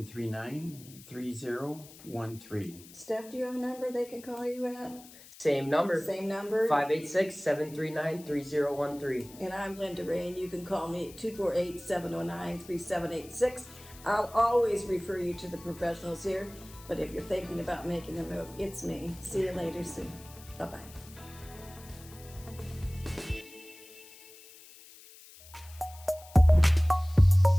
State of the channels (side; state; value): left; noise; hiss, 20 dB below the sound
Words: Steph, do you have a number they can call you at? Same number. Same number. 586-739-3013. And I'm Linda Rea, and you can call me at 248-709-3786. I'll always refer you to the professionals here, but if you're thinking about making a move, it's me. See you later soon. Bye-bye.